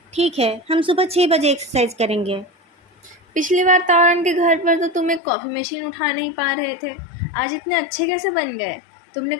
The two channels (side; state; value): right; drops out; at 5.2 s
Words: ठीक है, हम सुबह 6 बजे एक्सरसाइज करेंगे। पिछली बार तारण के घर पर तो तुम एक कॉफ़ी मशीन उठा नहीं पा रहे थे। आज इतने अच्छे कैसे बन गए? तुमने